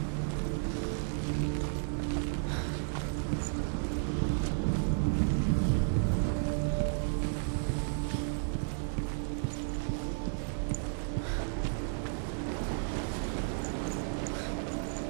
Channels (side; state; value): left; silent; 56 dB below the other